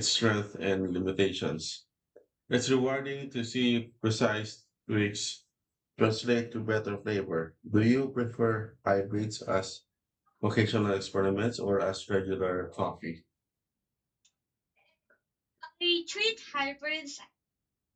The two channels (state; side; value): identical; both; correlation 1.00